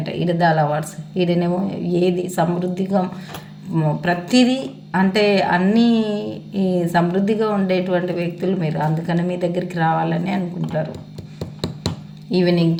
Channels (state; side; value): identical; both; correlation 1.00